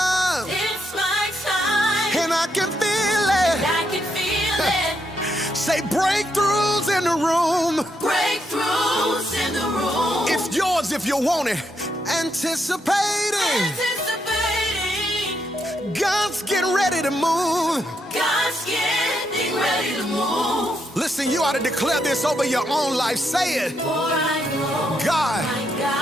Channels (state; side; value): normal; both; correlation 0.79